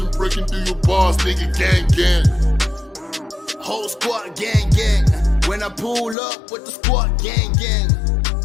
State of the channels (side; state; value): right; drops out; at 6.2 s